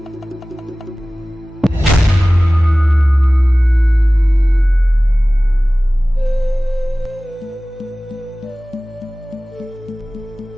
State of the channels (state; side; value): normal; both; correlation 0.97